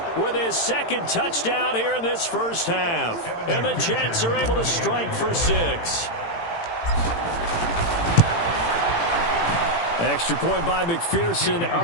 with his second touchdown here in this first half. And the Jets are able to strike for 6. Extra point by McPherson,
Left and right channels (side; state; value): right; late; 18 ms